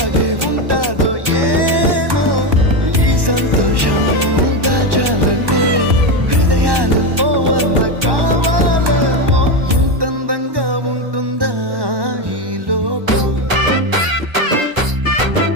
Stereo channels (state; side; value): late; left; 1.2 ms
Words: ఉంటాదో ఏమో ఈ సంతోషం దాచాలంటే హృదయాలు ఓ వంద కావాలేమో ఇంతందంగా ఉంటుందా ఈ లోకం